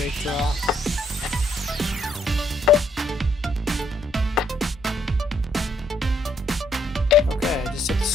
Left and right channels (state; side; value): normal; both; correlation 0.70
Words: draw. Okay, I just hit the